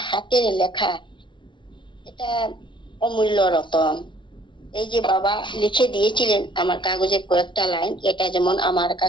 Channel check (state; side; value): late; right; 0.24 ms